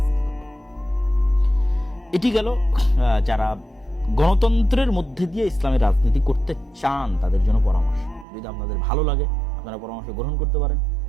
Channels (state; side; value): drops out; left; at 8.2 s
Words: করবে। এটি গেল যারা গণতন্ত্রের মধ্যে দিয়ে ইসলামের রাজনীতি করতে চান তাদের জন্য পরামর্শ। যদি আপনাদের ভালো লাগে আপনারা পরামর্শ গ্রহণ করতে পারেন,